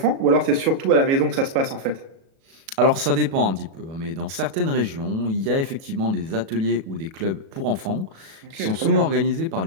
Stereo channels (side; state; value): left; late; 37 ms